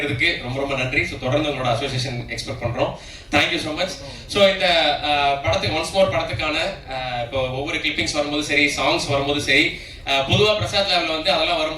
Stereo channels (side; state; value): both; identical; correlation 1.00